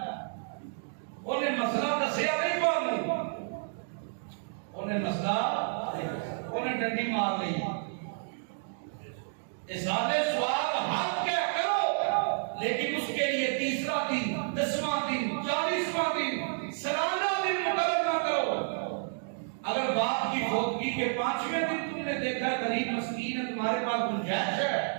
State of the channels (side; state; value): left; silent; digital silence